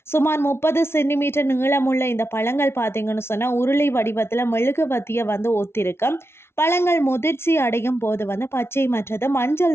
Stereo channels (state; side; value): late; right; 0.12 ms